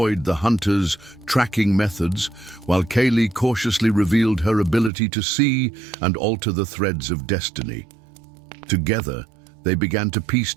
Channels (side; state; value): left; drops out; at 4.9 s